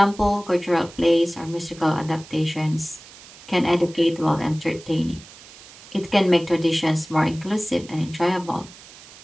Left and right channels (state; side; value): noise; right; hiss, 20 dB below the sound